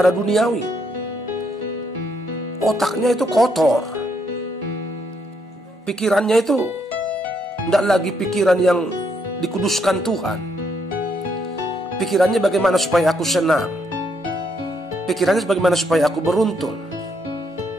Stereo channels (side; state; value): both; normal; correlation 0.74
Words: duniawi. Otaknya itu kotor. Pikirannya itu tidak lagi pikiran yang dikuduskan Tuhan. Pikirannya bagaimana supaya aku senang. Pikirannya bagaimana supaya aku beruntung.